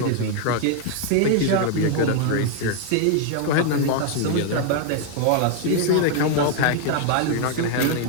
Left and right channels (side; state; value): both; different; correlation 0.00